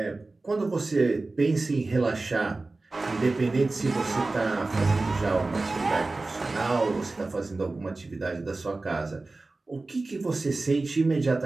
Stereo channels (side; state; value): left; quieter; 3.3 dB